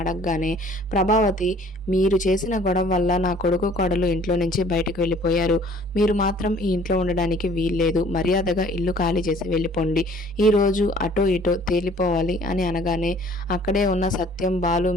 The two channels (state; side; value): normal; both; correlation 0.54